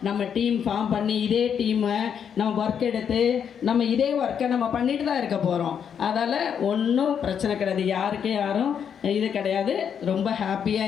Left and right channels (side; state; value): right; quieter; 7.8 dB